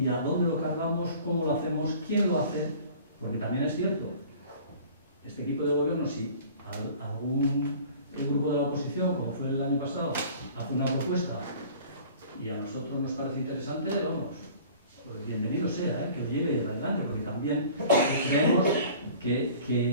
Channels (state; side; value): inverted; both; correlation -0.47